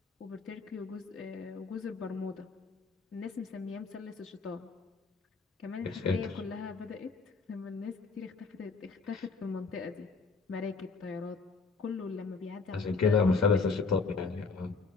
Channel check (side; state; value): right; quieter; 4.5 dB